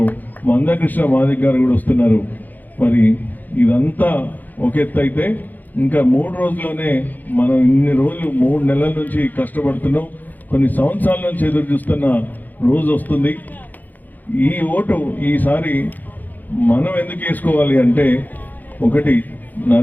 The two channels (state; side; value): late; right; 0.084 ms